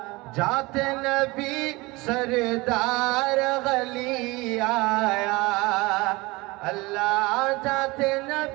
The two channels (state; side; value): quieter; left; 23.1 dB